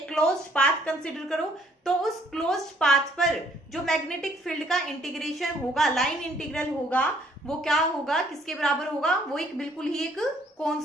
क्लोज्ड पाथ कंसिडर करो, तो उस क्लोज्ड पाथ पर जो मैग्नेटिक फील्ड का इंटीग्रेशन होगा, लाइन इंटीग्रल होगा, वो क्या होगा, किसके बराबर होगा, वो एक बिल्कुल ही एक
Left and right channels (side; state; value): both; normal; correlation 0.63